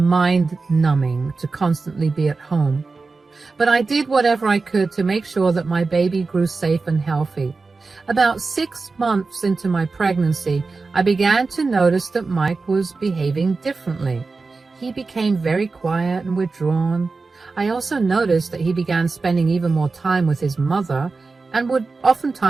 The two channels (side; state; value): left; quieter; 4.0 dB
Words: to constantly be at home. But I did whatever I could to make sure that my baby grew safe and healthy. About 6 months into my pregnancy, I began to notice that Mike was behaving differently. He became very quiet and withdrawn. I also noticed that he began spending even more time with his mother and would